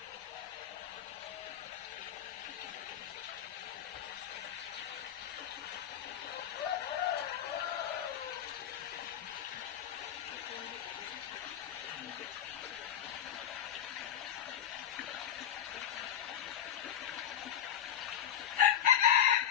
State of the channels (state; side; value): quieter; right; 9.7 dB